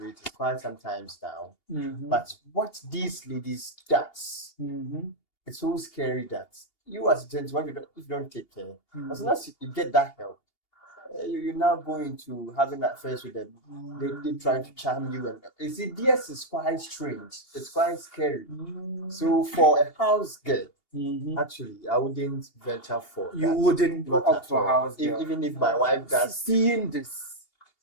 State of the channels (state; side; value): late; right; 2.8 ms